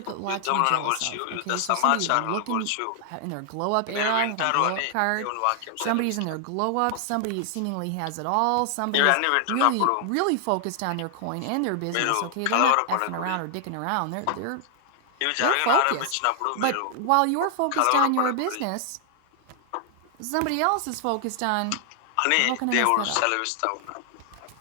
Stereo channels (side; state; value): both; different; correlation 0.00